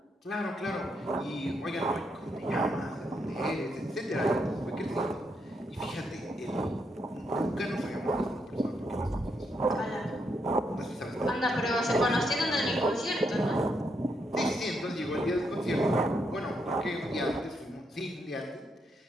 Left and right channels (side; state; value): both; normal; correlation 0.78